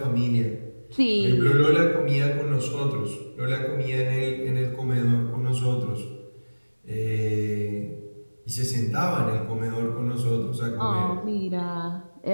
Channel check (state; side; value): inverted; both; correlation -1.00